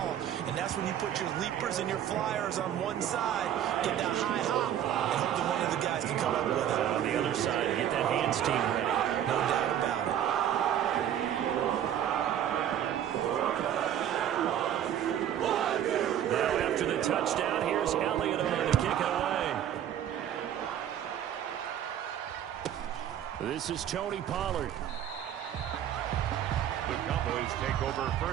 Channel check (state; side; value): quieter; left; 10.4 dB